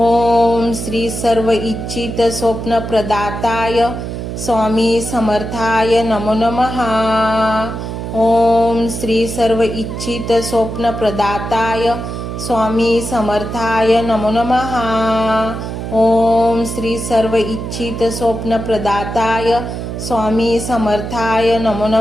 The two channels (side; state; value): right; noise; hum, 6 dB below the sound